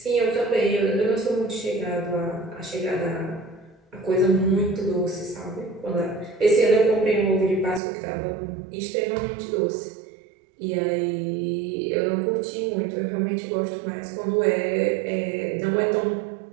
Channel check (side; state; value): left; drops out; at 7.8 s